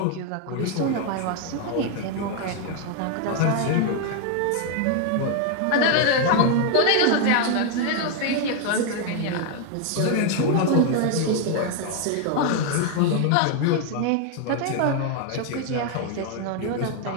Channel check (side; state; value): both; different; correlation 0.01